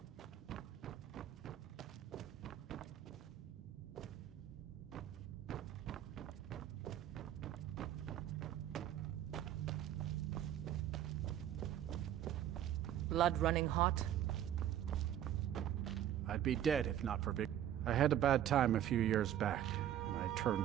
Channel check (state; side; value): quieter; left; 11.2 dB